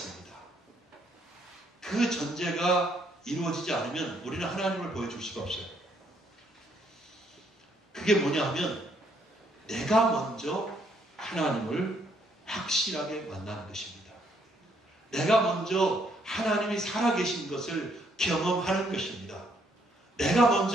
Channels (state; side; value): normal; both; correlation 0.70